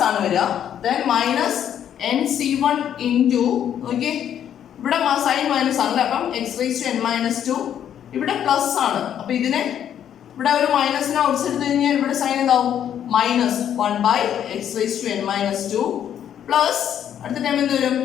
ആണ് വരിക. Then minus nc1 into okay, ഇവിടെ സൈൻ മൈനസ് ആണല്ലേ, അപ്പം x raised to n minus 2 ഇവിടെ പ്ലസ് ആണ്. അപ്പൊ ഇതിനെ ഇവിടെ ഒരു മൈനസിനെ ഔട്ട്സ് എടുത്തു കഴിഞ്ഞാൽ ഇവിടെ സൈൻ എന്താവും? -1 by x raised to n minus 2 plus അടുത്ത ടൈം എന്ത് വരും?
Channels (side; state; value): right; quieter; 9.7 dB